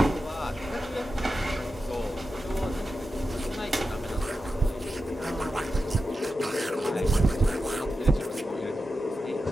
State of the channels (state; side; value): normal; both; correlation 0.91